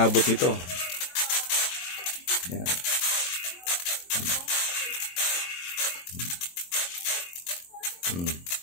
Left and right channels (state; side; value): late; right; 23 ms